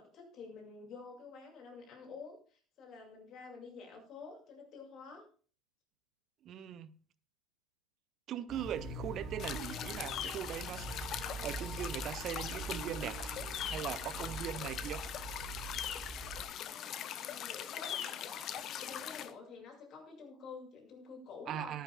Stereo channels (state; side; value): normal; both; correlation 0.50